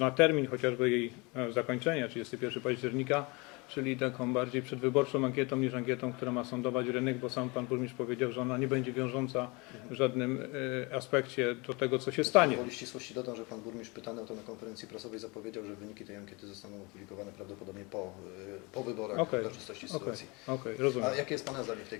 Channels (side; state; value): right; quieter; 27.4 dB